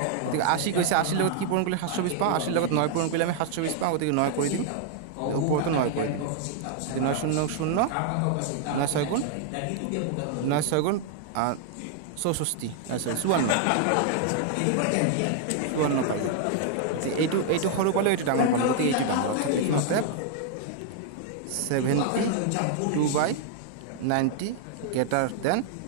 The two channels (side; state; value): both; different; correlation 0.00